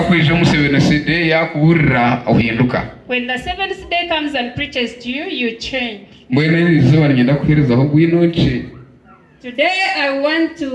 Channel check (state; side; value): identical; both; correlation 1.00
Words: musebene yakuburira uhinduka. When the seventh day comes and preaches to you, you change. Mbone izuba ngenda kuhereza aho gwinonce. Today I want